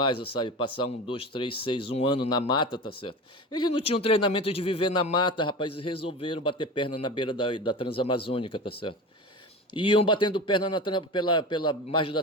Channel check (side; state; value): both; normal; correlation 0.30